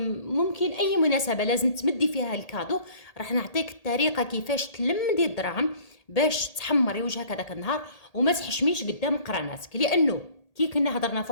ممكن اي مناسبه لازم تمدي فيها الكادو، راح نعطيك الطريقه كيفاش تلمدي الدراهم باش تحمري وجهك هذاك النهار وما تحشميش قدام قراناتك. لانه كي كنا هضرنا في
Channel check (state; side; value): late; right; 1.8 ms